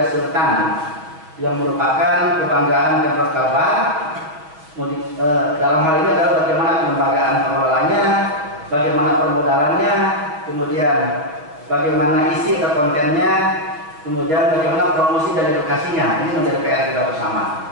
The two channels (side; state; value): left; late; 6.4 ms